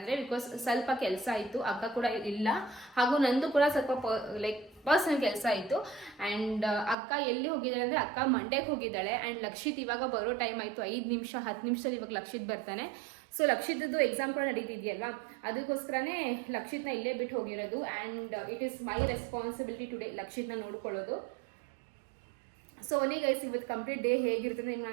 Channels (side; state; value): left; drops out; at 7.0 s